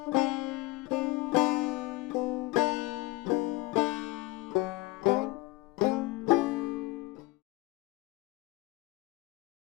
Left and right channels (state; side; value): quieter; right; 21.4 dB